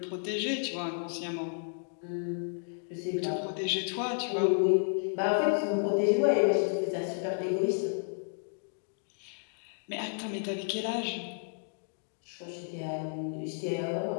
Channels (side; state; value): right; silent; digital silence